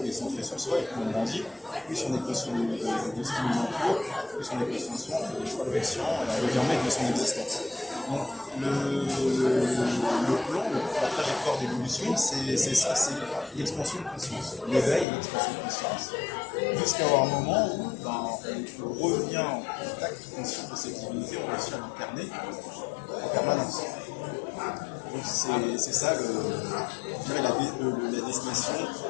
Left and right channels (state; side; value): drops out; right; at 15.1 s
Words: on est centré sur soi, et plus on grandit, plus on est conscient de ce qui nous entoure, plus on est conscient de soi, on fait des choix conscients, et on devient maître de son existence. Donc le plan, la trajectoire d'évolution, c'est ça, c'est l'expansion de conscience, l'éveil et l'expansion de conscience, jusqu'à avoir un moment où on revient en contact conscient de cette divinité, on réussit à l'incarner en permanence. Donc c'est ça, je dirais, la destination